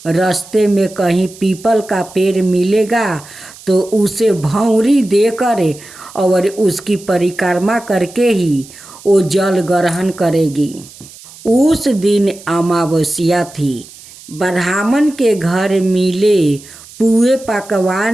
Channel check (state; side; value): noise; right; hiss, 20 dB below the sound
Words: रास्ते में कहीं पीपल का पेड़ मिलेगा तो उसे भौंरी देकर और उसकी परिक्रमा करके ही वो जल ग्रहण करेगी। उस दिन अमावस्या थी। ब्राह्मण के घर मिले पुए